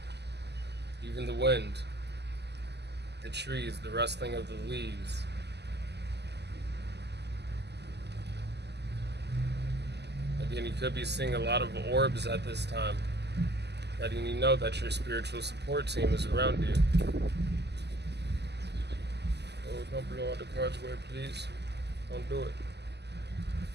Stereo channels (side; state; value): left; late; 0.50 ms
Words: Even the wind, the trees, the rustling of the leaves. Again, you could be seeing a lot of orbs at this time, letting you know that your spiritual support team is around you. Oh, don't blow out the cards away, please. Don't do it.